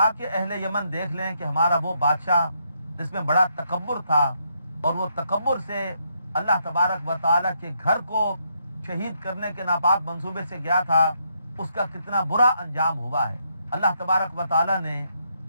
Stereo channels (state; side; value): inverted; both; correlation -0.76